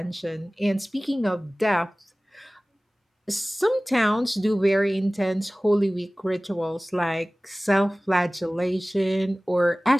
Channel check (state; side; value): normal; both; correlation 0.98